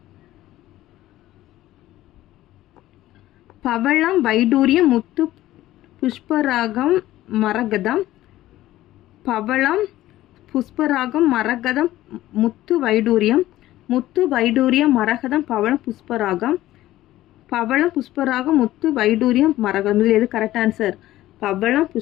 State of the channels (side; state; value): right; quieter; 15.2 dB